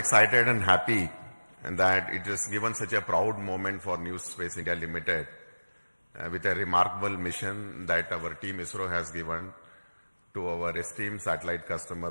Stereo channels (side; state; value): both; inverted; correlation -1.00